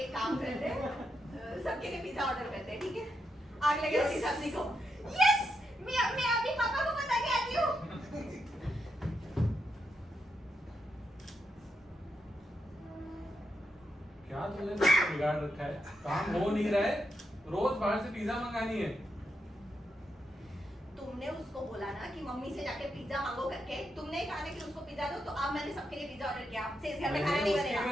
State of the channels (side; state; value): both; normal; correlation 0.83